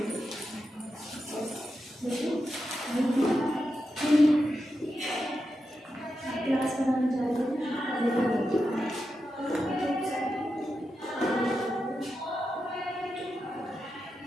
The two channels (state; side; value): normal; both; correlation 0.88